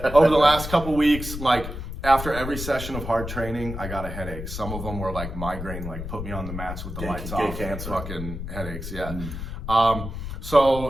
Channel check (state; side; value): noise; left; rumble, 7 dB below the sound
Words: of weeks, like after every session of hard training, I got a headache. Some of them were like migraine, like put me on the mats with the lights off. Cancer. Fucking headaches, yeah.